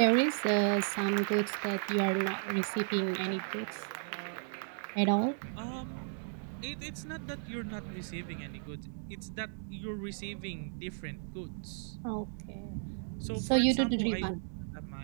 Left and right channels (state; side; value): silent; left; digital silence